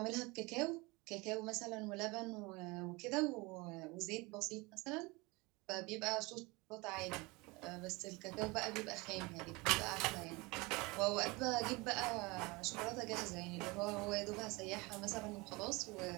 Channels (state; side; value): quieter; left; 24.8 dB